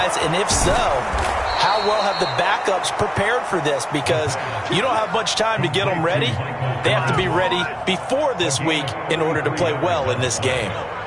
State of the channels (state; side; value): identical; both; correlation 1.00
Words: And if so, how well have the backups prepared for this? Because you don't have much time to get them ready. They have to be ready before this week in order to play well in this game.